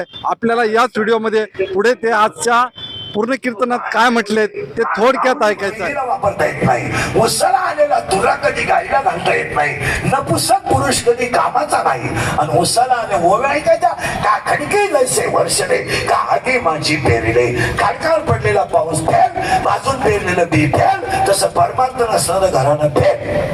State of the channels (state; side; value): identical; both; correlation 1.00